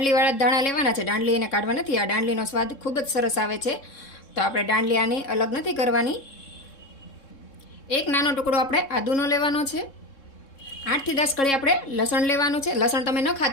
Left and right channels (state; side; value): late; right; 3.7 ms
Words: દાણા લેવાના છે, દાંડલી એને કાઢવા નથી. આ દાંડલીનો સ્વાદ ખૂબ જ સરસ આવે છે, તો આપણે દાંડલી આની અલગ નથી કરવાની. એક નાનો ટુકડો આપણે આદુનો લેવાનો છે. 8 થી 10 કળી આપણે લસણ લેવાનું છે. લસણ તમે ન